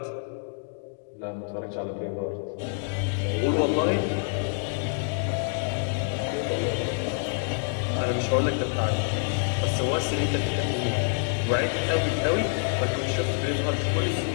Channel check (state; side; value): silent; right; 60 dB below the other